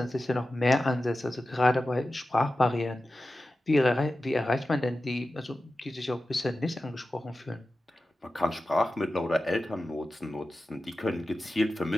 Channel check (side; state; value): both; normal; correlation 0.94